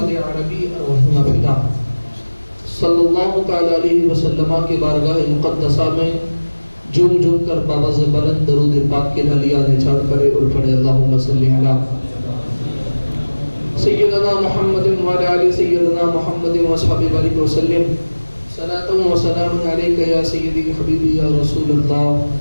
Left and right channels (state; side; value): inverted; both; correlation -1.00